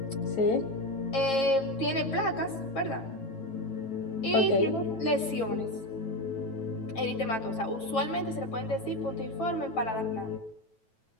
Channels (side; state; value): right; late; 9.1 ms